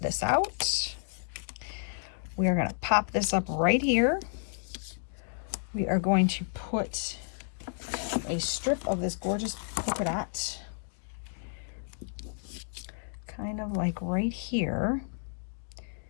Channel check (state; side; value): silent; right; digital silence